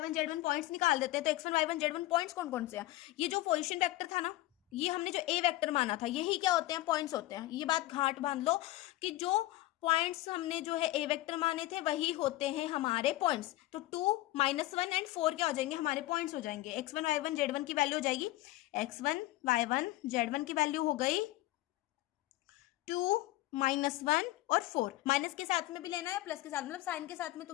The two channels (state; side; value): quieter; right; 17.0 dB